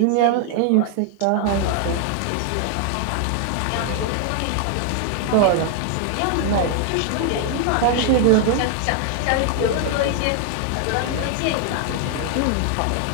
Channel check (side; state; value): both; different; correlation 0.00